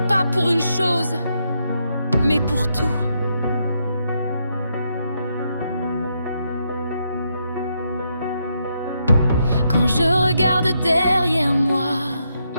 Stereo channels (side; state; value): both; inverted; correlation -0.79